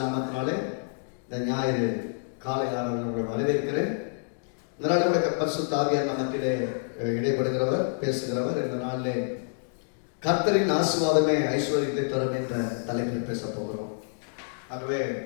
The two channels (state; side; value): silent; right; digital silence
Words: நாமத்தினாலே இந்த ஞாயிறு காலை ஆராதனை உங்களை வரவேற்கிறேன். இந்த நாளில் பரிசுத்த ஆவியார் நம்மத்திலே இடைப்படுகிறவர், பேசுகிறவர். இந்த நாளிலே கர்த்தரின் ஆசீர்வாதமே ஐஸ்வர்யத்தை தரும் என்ற தலைப்பில் பேச போகிறோம். ஆகவே